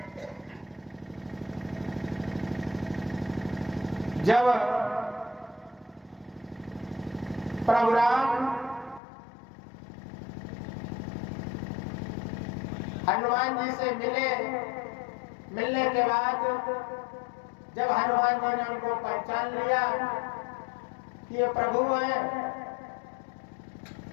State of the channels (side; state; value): right; drops out; at 9.0 s